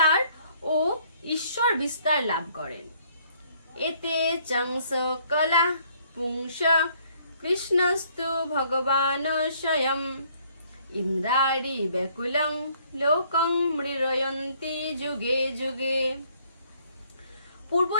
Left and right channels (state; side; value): inverted; both; correlation -0.64